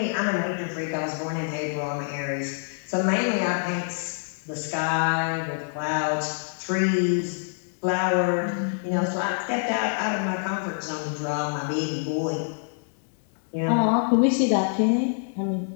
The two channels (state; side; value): silent; right; digital silence